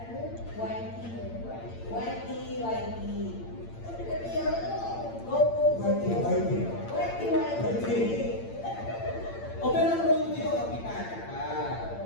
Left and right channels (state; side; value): late; right; 8.8 ms